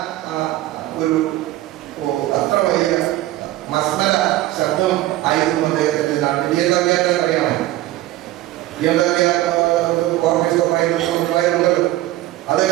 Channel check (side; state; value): left; quieter; 15.9 dB